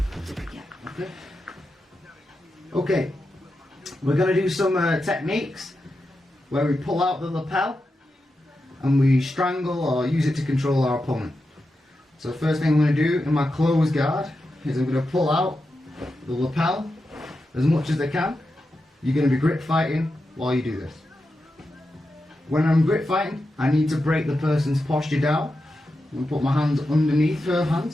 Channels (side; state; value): both; normal; correlation 0.89